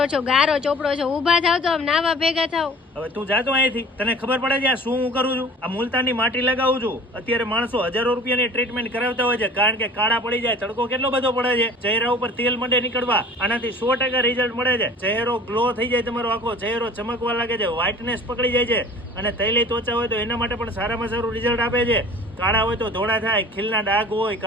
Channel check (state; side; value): normal; both; correlation 0.45